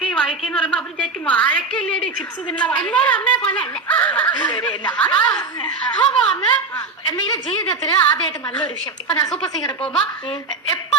എന്ന് പറയുമ്പോ അവര് വിചാരിക്കും വാഴക്കല്ലേടി ചിപ്സ് തിന്ന. എല്ലാരും അമ്മയെ പോലെ അല്ല. എന്തെങ്കിലും ജീവിതത്തില് ആദ്യമായിട്ട് നല്ലൊരു വിഷയം. ഇപ്പൊ ഞാൻ സൂപ്പർ സിംഗറിൽ പോകുമ്പോ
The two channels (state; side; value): quieter; left; 3.8 dB